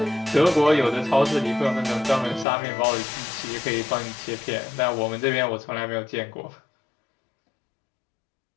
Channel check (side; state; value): right; drops out; at 2.5 s